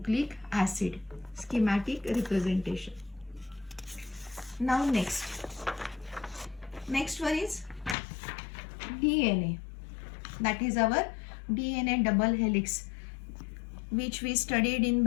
acid. Schematic representation. Now next one is DNA. That is our DNA double helix, which we studied in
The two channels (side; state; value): right; drops out; at 8.0 s